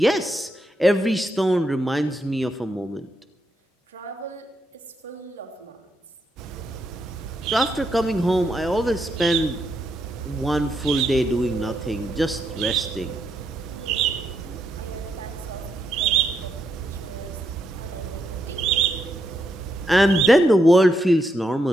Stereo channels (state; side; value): normal; both; correlation 0.80